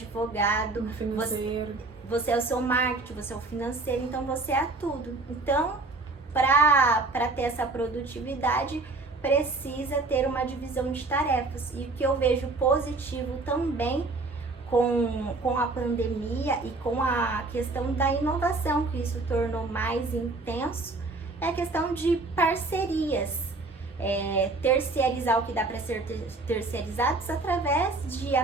você é o seu marketing, você é o financeiro, então você é tudo. Então, para ter essa produtividade, precisa ter uma divisão de tarefas. E o que eu vejo positivo também com a pandemia e com a questão da inovação, que isso tornou mais intenso, é a questão de parcerias, terceirizar o que dá para ser terceirizados através de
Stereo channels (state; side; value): quieter; left; 3.4 dB